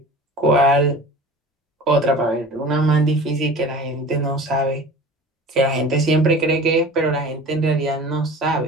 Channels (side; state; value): both; normal; correlation 0.40